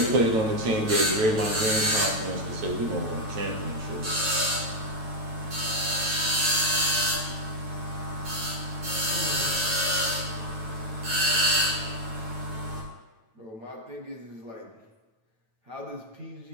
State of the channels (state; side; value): late; left; 9.0 ms